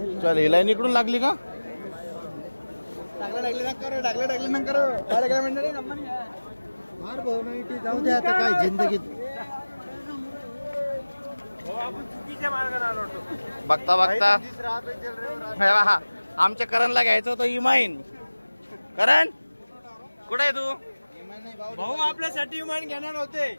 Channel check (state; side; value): inverted; both; correlation -1.00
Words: चल ही लाईन इकडून लागली का? टाकले ना करो. जाऊ दे आता काय जिंदगीत. बघता बघता आमच्या करणला घ्यायचं होतं इमाईन. करण कुठे आहे तू? भाऊ आपल्यासाठी विमान घेणार होते.